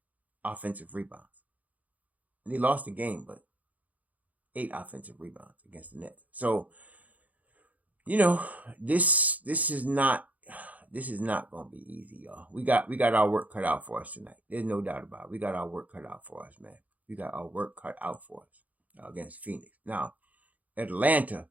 offensive rebounds. And they lost the game, but 8 offensive rebounds against the Nets. So, this is not going to be easy, y'all. We got our work cut out for us tonight. There's no doubt about it. We got our work cut out for us, man. We got our work cut out for us against Phoenix. Now, Atlanta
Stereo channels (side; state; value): left; late; 0.075 ms